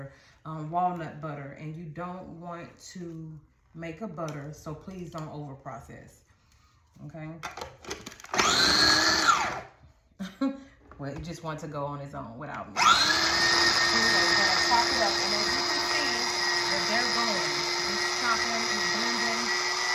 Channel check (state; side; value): identical; both; correlation 1.00